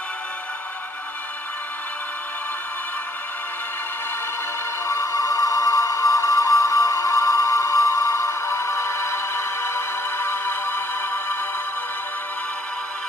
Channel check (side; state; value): both; normal; correlation 0.67